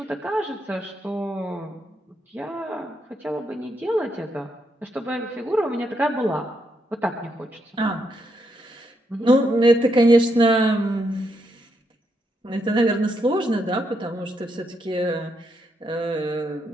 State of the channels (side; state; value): both; normal; correlation 0.79